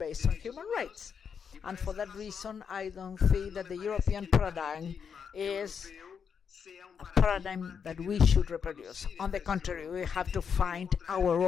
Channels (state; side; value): quieter; right; 6.8 dB